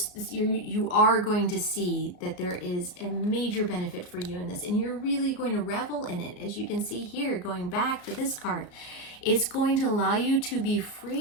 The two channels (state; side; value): late; right; 34 ms